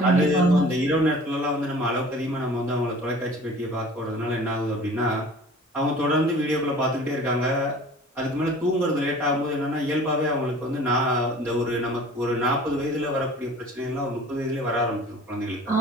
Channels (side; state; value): both; normal; correlation 0.45